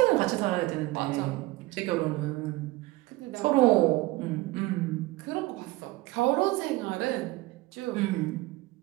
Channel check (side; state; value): left; quieter; 20.0 dB